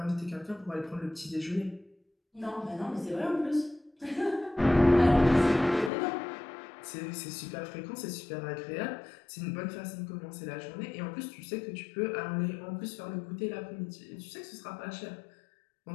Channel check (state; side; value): drops out; right; at 5.9 s